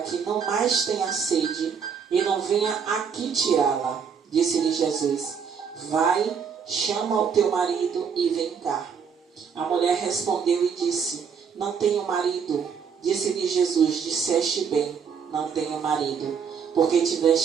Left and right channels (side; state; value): left; quieter; 6.6 dB